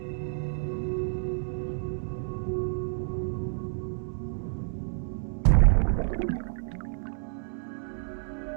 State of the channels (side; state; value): left; silent; 58 dB below the other